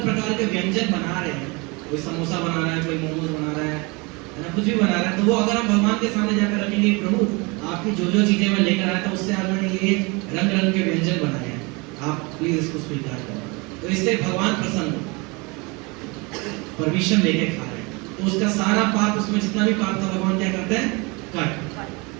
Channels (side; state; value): left; quieter; 27.5 dB